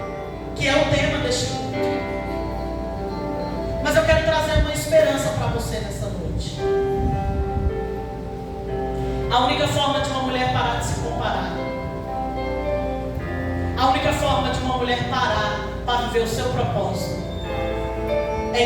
que é o tema deste culto. Mas eu quero trazer uma esperança para você nessa noite. A única forma de uma mulher parar de se comparar, a única forma de uma mulher parar para viver o seu propósito, é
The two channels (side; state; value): both; identical; correlation 1.00